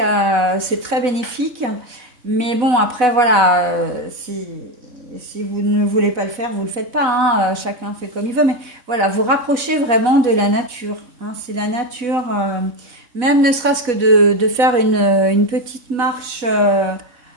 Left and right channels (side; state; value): left; late; 4.0 ms